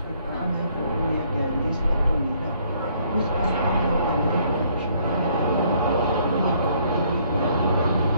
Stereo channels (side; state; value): both; inverted; correlation -0.65